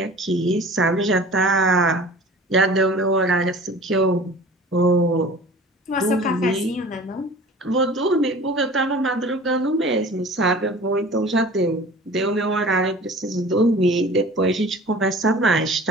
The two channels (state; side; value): normal; both; correlation 0.42